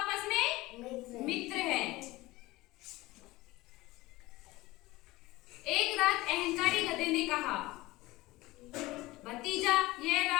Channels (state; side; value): quieter; right; 19.6 dB